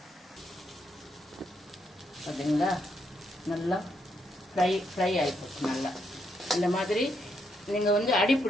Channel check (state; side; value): normal; both; correlation 0.78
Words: பார்த்தீங்களா, நல்லா ஃப்ரை ஆகிப்போச்சு. நல்லா இந்த மாதிரி நீங்கள் வந்து அடி